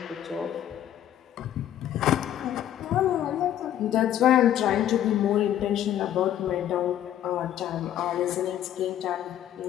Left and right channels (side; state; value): right; quieter; 11.4 dB